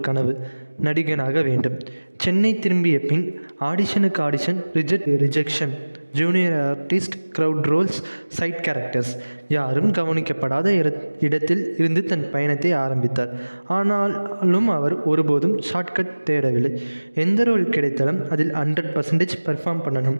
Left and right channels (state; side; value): inverted; both; correlation -1.00